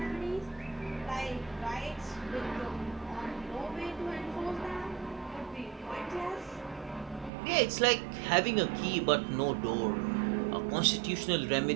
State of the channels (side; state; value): left; drops out; at 7.3 s